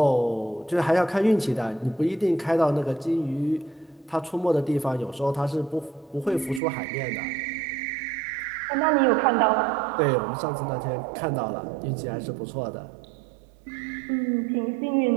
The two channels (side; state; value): left; drops out; at 6.6 s